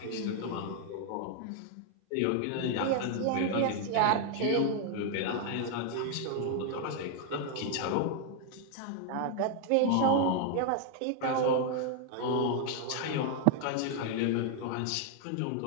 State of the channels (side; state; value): both; different; correlation 0.00